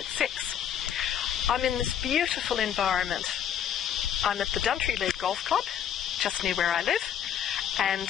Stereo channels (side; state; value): right; quieter; 9.3 dB